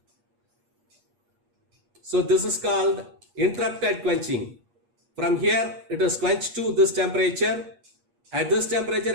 So this is called interrupted quenching. From here it is quenched to this temperature. At this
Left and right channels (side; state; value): left; late; 8.4 ms